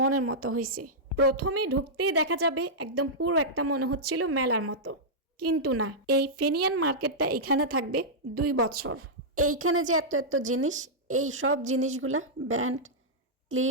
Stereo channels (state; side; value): normal; both; correlation -0.10